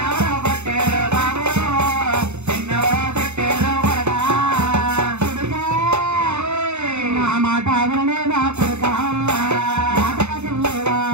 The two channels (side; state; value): left; late; 0.82 ms